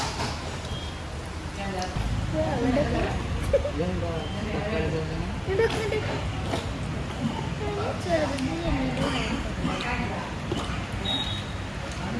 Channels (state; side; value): identical; both; correlation 1.00